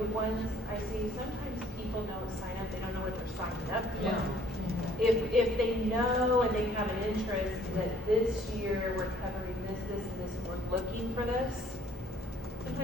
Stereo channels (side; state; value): both; normal; correlation 0.59